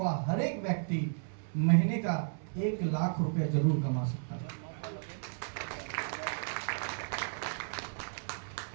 हर एक व्यक्ति महीने का 1 लाख रुपया जरूर कमा सकता है।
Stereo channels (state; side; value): silent; left; 55 dB below the other